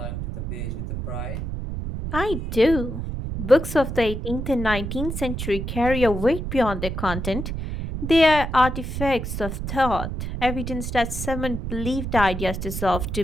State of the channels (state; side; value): noise; right; rumble, 5 dB below the sound